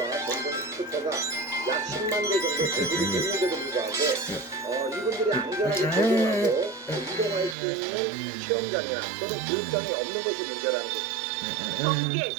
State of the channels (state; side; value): drops out; left; at 7.6 s